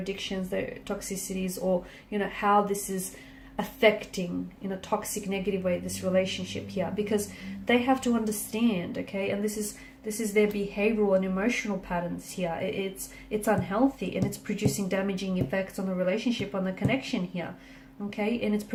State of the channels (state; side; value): identical; both; correlation 1.00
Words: their toxicities, or how this is affecting in a toxic, negative way this relationship here, because they have to understand, okay? And this is their behavioral and emotional patterns here. It's unhealthy, and it's producing damaging effects on the relationship, on the connection here, okay? And it's